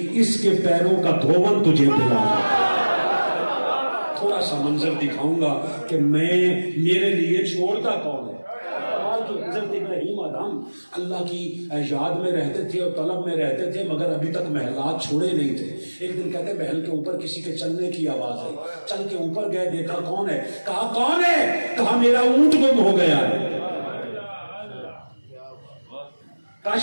اس کے پیروں کا دھون تجھے پلاؤں گا، تھوڑا سا منظر دکھاؤں گا کہ میرے لیے چھوڑتا کون ہے۔ حضرت ابراہیم آدم اللہ کی یاد میں رہتے تھے اور طلب میں رہتے تھے، مگر ابھی تک محلات چھوڑے نہیں تھے۔ ایک دن کہتے محل کے اوپر کسی کے چلنے کی آواز آئی، چل کے اوپر گئے، دیکھا کون ہے؟ کہا کون ہے؟ کہا میرا اونٹ گم ہو گیا ہے۔ کہا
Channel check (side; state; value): both; inverted; correlation -1.00